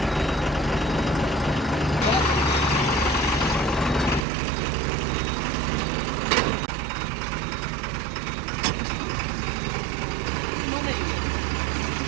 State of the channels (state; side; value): drops out; left; at 4.2 s